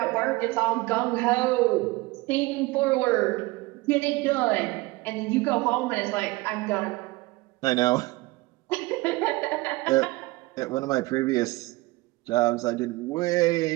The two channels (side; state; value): left; quieter; 21.6 dB